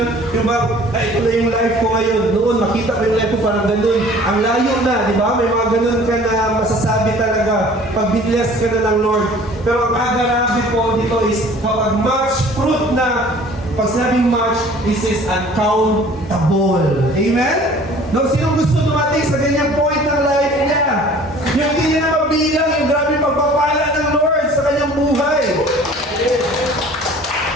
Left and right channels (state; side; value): normal; both; correlation 0.49